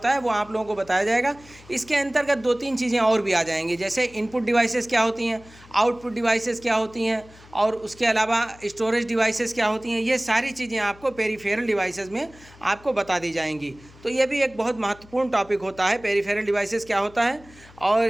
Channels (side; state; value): left; noise; hum, 23 dB below the sound